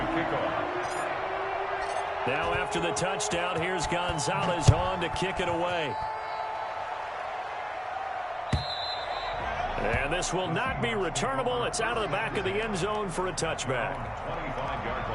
kick off. Now after the touchdown, here's Gonzalez on to kick it away. And this will not be returnable. It's out of the back of the end zone for a touchback. 25-yard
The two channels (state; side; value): identical; both; correlation 1.00